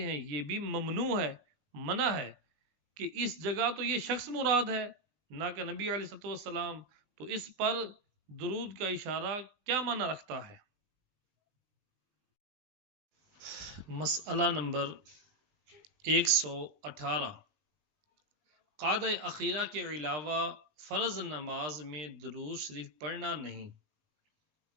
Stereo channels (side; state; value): left; late; 20 ms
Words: یہ بھی ممنوع ہے، منع ہے کہ اس جگہ تو یہ شخص مراد ہے نہ کہ نبی علیہ الصلوۃ والسلام، تو اس پر درود کا اشارہ کیا معنی رکھتا ہے؟ مسئلہ نمبر 118، قعدہ اخیرہ کے علاوہ فرض نماز میں درود شریف پڑھنا نہیں،